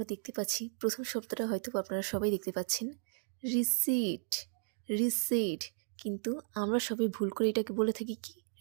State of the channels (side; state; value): left; silent; digital silence